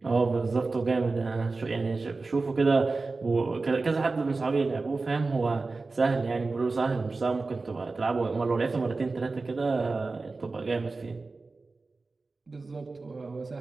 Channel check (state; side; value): quieter; left; 3.7 dB